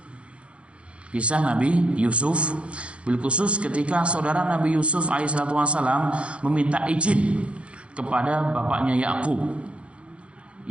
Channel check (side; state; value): left; late; 0.060 ms